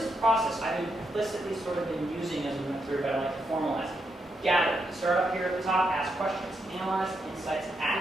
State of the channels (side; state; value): both; normal; correlation 0.82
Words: process. implicitly sort of been using as we went through, but I like to formalize it. Gather. Start up here at the top, ask questions, analyze, insights,